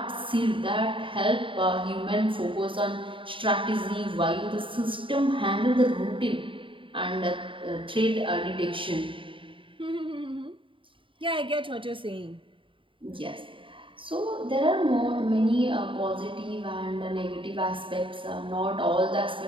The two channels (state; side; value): late; left; 0.25 ms